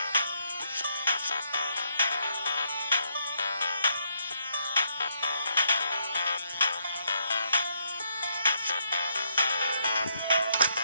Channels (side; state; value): both; inverted; correlation -0.75